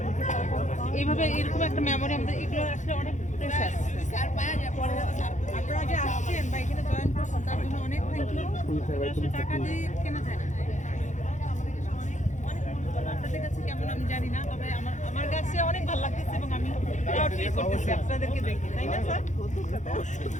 এইভাবে, এরকম একটা মেমোরি আমাদের, এগুলো আসলে অনেক প্রেশাস। আপনারা যে আসছেন বা এখানে জয়েন করছেন তার জন্য অনেক থ্যাংক ইউ। আসলে টাকা দিয়ে কেনা যায় না। আপনাদের কাছে কেমন আমি জানি না, তবে আমার কাছে অনেক ভালো লাগতেছে এবং আমি প্রাউড ফিল করতেছি আপনাদেরকে দেখে, তাই না স্যার?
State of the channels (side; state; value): right; late; 0.35 ms